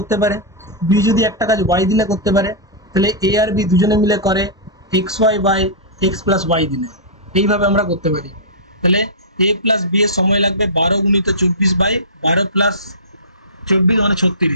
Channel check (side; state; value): both; normal; correlation -0.18